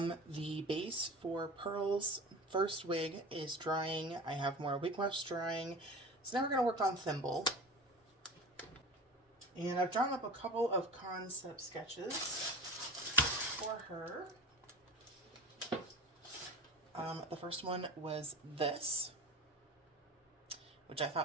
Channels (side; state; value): both; normal; correlation 0.33